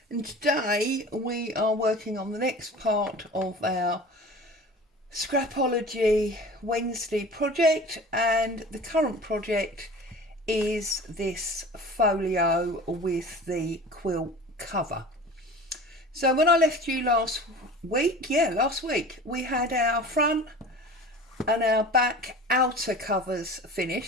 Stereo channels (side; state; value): both; normal; correlation 0.39